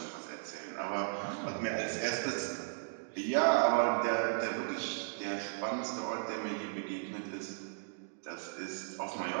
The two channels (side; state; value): left; silent; digital silence